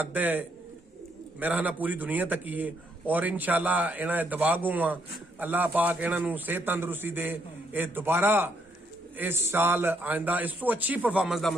ਦੇ ਮੇਰਾ ਨਾ ਪੂਰੀ ਦੁਨੀਆ ਤੱਕ ਹੀ ਹੈ। ਔਰ ਇਨਸ਼ਾਅੱਲਾ ਇਹਨਾਂ ਦੇ ਦਵਾਗੂ ਆ, ਅੱਲਾਹ ਪਾਕ ਇਹਨਾਂ ਨੂੰ ਸਿਹਤ ਤੰਦਰੁਸਤੀ ਦੇ, ਇਹ ਦੁਬਾਰਾ ਇਸ ਸਾਲ ਆਇੰਦਾ ਇਸ ਤੋਂ ਅੱਛੀ ਪਰਫਾਰਮੈਂਸ ਦਾ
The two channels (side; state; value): both; normal; correlation 0.74